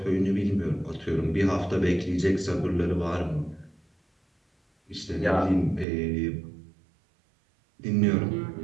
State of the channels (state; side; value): drops out; left; at 5.9 s